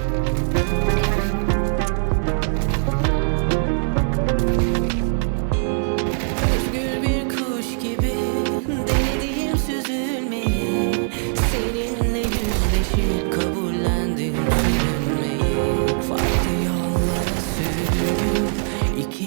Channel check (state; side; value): silent; left; 56 dB below the other